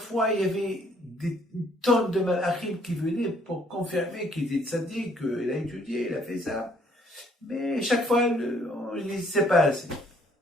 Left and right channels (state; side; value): normal; both; correlation 0.64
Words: il y avait des tonnes de malachim qui venaient pour confirmer qu'il était tzaddik, qu'il a étudié, il a fait ça. Mais chaque fois, on ne sait pas assez.